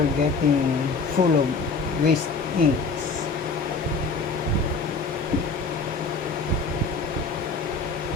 getting full of waste inks.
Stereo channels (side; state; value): right; quieter; 4.3 dB